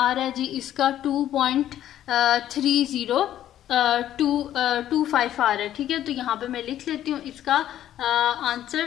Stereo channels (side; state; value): right; quieter; 11.9 dB